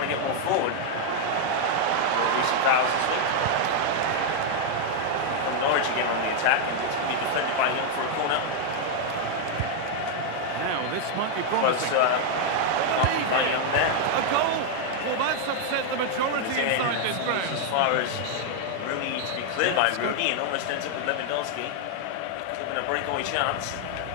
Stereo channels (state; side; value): different; both; correlation 0.00